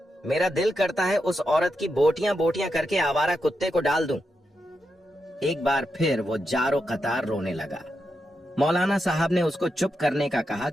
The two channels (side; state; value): both; normal; correlation 0.86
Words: मेरा दिल करता है उस औरत की बोटियां बोटियां करके आवारा कुत्ते को डाल दूं। एक बार फिर वो जारो कतार रोने लगा। मौलाना साहब ने उसको चुप करने का कहा